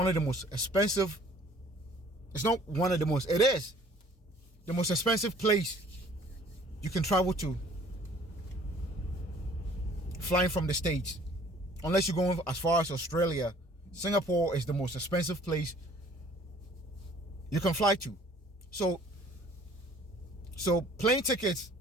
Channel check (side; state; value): both; normal; correlation 0.54